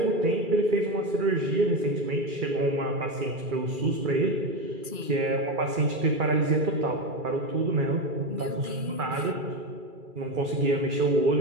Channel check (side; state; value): left; late; 2.4 ms